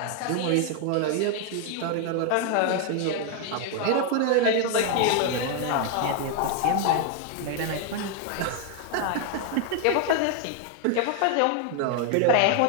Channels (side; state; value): both; different; correlation 0.00